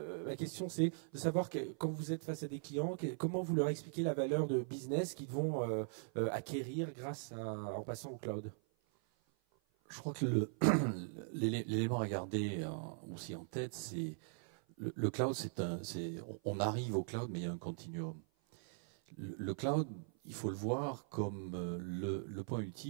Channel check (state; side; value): silent; left; 51 dB below the other